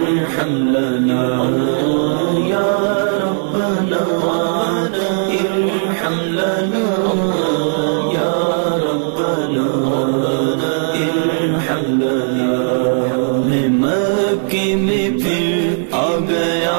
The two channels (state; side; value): silent; left; digital silence